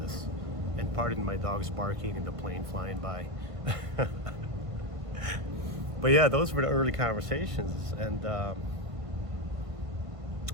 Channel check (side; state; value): left; late; 1.5 ms